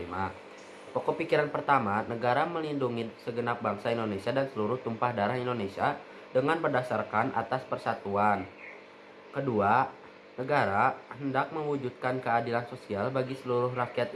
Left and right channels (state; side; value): identical; both; correlation 1.00